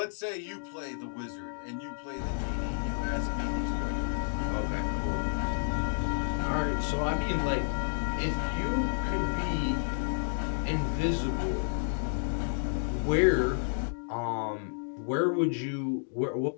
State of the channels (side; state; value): right; silent; digital silence